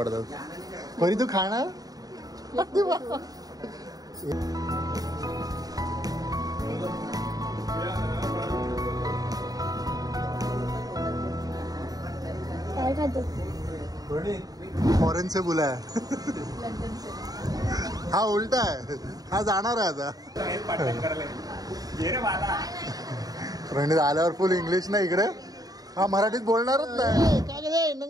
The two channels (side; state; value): left; late; 0.18 ms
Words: परी तू खाणार? काय खातो? फॉरेन से बुला है. हा उलटा आहे. हा जाणार आहे आता. प्रणित आल्यावर फुल इंग्लिश ना इकडे. हा मराठीत बोलणारच नाही. काय रे